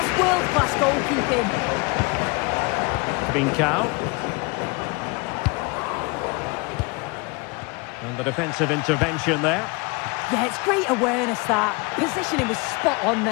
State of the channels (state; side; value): quieter; right; 27.7 dB